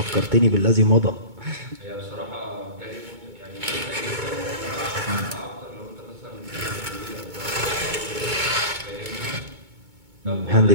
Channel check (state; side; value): late; left; 2.2 ms